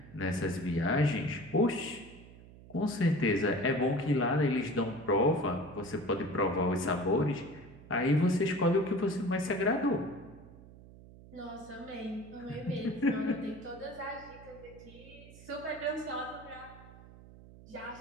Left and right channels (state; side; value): noise; right; hum, 19 dB below the sound